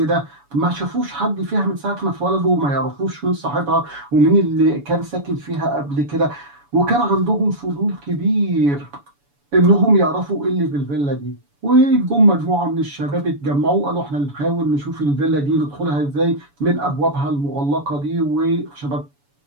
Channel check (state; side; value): late; left; 7.0 ms